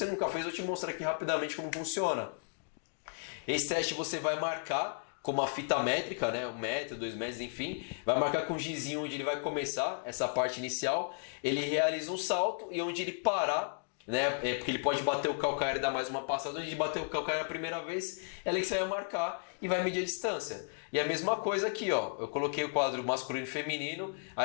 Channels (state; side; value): silent; right; digital silence